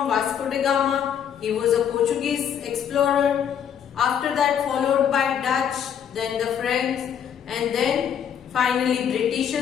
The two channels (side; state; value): right; quieter; 8.6 dB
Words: Vasco da Gama, he was a Portuguese explorer. After that followed by Dutch, then the French, and then finally